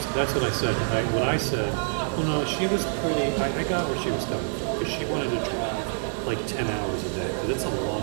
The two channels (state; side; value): silent; left; digital silence